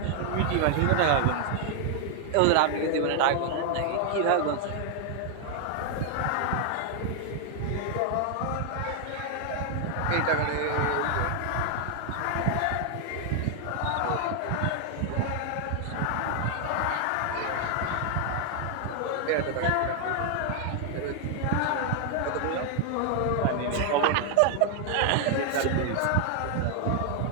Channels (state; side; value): different; both; correlation 0.00